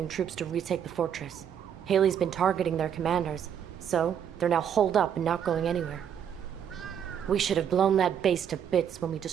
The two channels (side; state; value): left; quieter; 8.7 dB